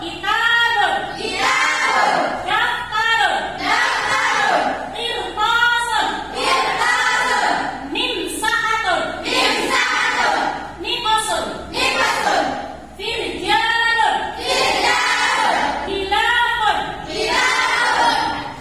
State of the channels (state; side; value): identical; both; correlation 1.00